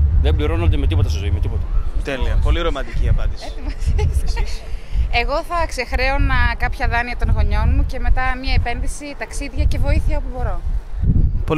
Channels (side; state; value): both; identical; correlation 1.00